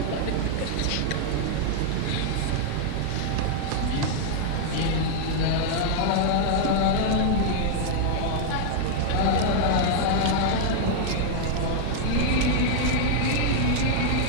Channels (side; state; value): both; different; correlation 0.00